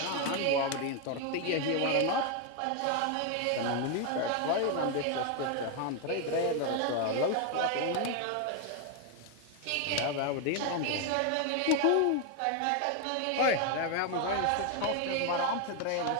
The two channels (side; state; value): both; different; correlation 0.01